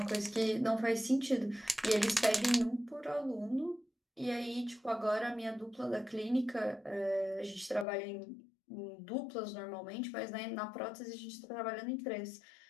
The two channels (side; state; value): right; drops out; at 7.9 s